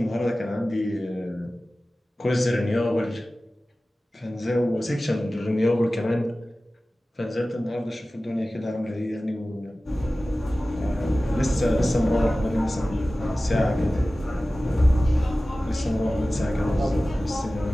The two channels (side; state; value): both; normal; correlation 0.96